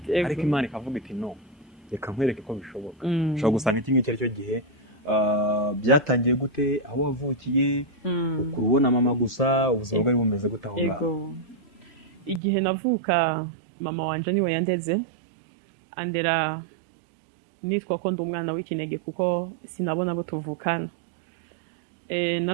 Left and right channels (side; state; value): left; drops out; at 12.4 s